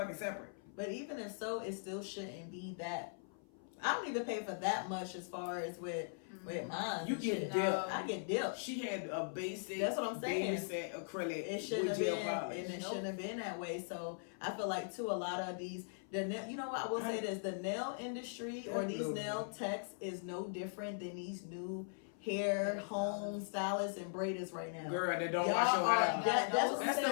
separate? But even if so, it still shouldn't be that. I don't even pay for that much as far as with mine. You get dipped. I get dipped. She had a basic. That's what I'm saying. Baby set acrylic. It shouldn't have been, polish. and it shouldn't have been that way. So I feel like too, a lot of these, you know what I will say this: the nail industry or these nail techs is no different than these new hair home stylists and braiders right now. Girl, that don't wash your hair.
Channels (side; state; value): right; silent; 51 dB below the other